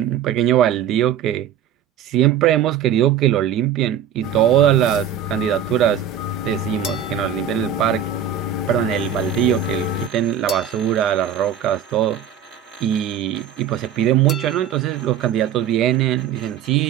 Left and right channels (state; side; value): quieter; left; 8.7 dB